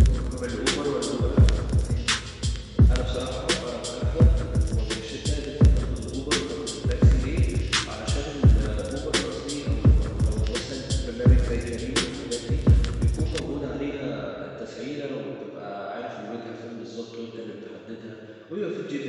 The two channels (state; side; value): identical; both; correlation 1.00